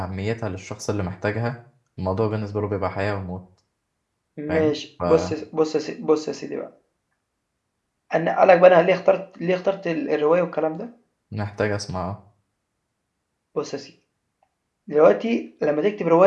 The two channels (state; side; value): identical; both; correlation 1.00